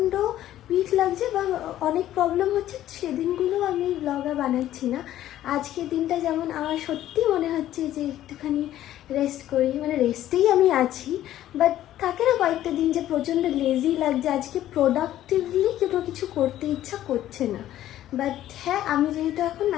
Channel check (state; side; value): quieter; right; 12.9 dB